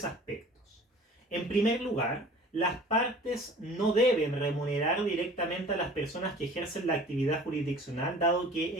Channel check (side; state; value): both; normal; correlation 0.46